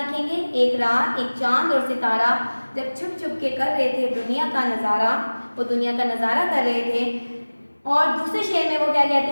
एक रात एक चांद और सितारा जब छुप छुप के कर रहे थे दुनिया का नज़ारा, वो दुनिया का नज़ारा कर रहे थे। और दूसरे शेर में वो क्या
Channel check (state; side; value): inverted; both; correlation -1.00